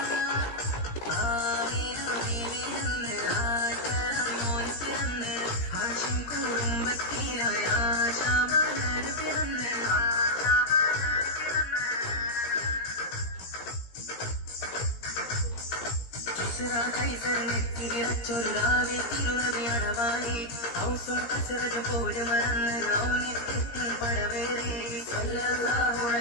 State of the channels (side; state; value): right; late; 17 ms